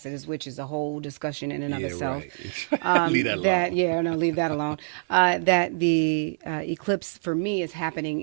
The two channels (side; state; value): left; silent; digital silence